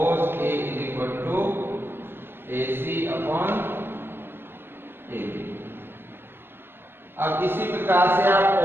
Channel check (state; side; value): late; left; 0.10 ms